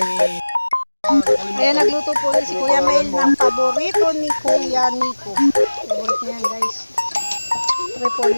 Ayan, nagluto po ni si Kuya Mel ng paborito ni Kuya Nico. Paborito niyan guys.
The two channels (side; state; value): both; inverted; correlation -1.00